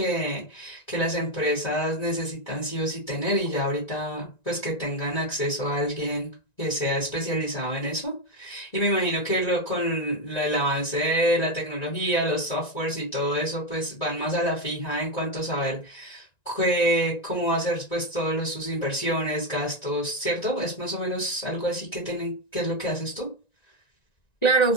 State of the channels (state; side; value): late; right; 1.9 ms